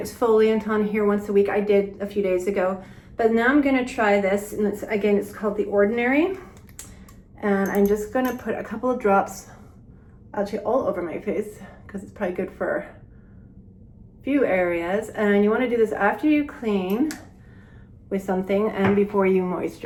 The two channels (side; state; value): both; identical; correlation 1.00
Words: on here once a week. I did a few days ago, but now I'm gonna try this. And it's called The Ordinary. And I'm just gonna put a couple of drops actually all over my face because it's probably good for a few areas. And you wanna do this after you clean with something and before you